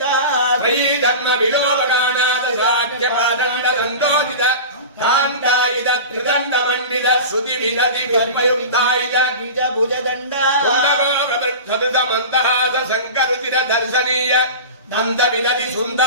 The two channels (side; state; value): both; inverted; correlation -0.31